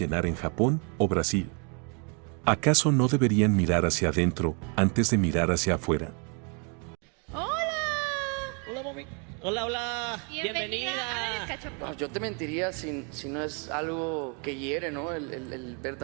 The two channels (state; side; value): quieter; left; 36.6 dB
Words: en Japón o Brasil? ¿Acaso no deberían mirar hacia adentro antes de mirar hacia afuera? Hola, mami. Hola, hola. Bienvenida. No, yo te mentiría si no es algo que hiere, ¿no? El ver